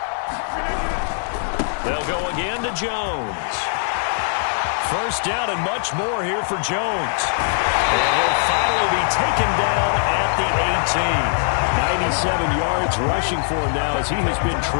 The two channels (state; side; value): silent; right; 59 dB below the other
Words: They'll go again to Jones. First down and much more here for Jones. And he'll finally be taken down at the 18. 97 yards rushing for him now as he has been